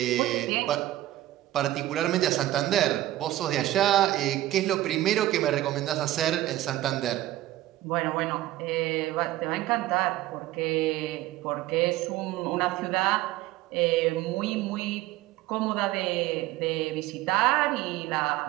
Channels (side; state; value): left; quieter; 15.2 dB